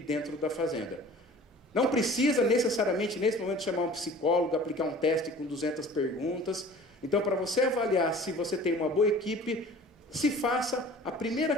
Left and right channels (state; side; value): normal; both; correlation 0.45